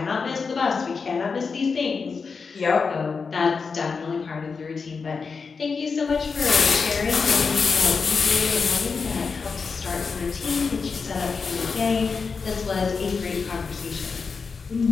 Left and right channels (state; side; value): quieter; right; 5.1 dB